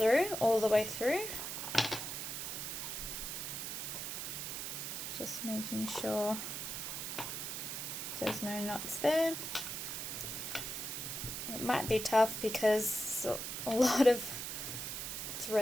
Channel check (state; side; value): noise; right; hiss, 4 dB below the sound